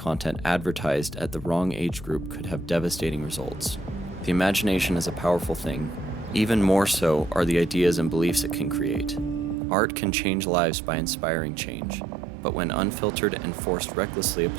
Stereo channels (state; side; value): drops out; left; at 9.6 s